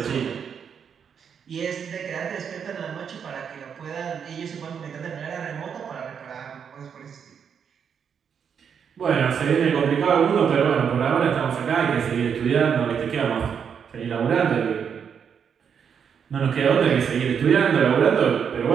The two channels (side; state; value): left; quieter; 7.3 dB